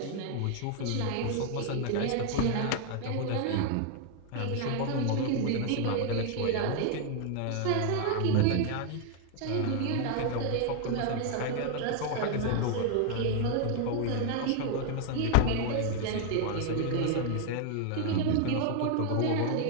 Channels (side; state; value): both; different; correlation 0.00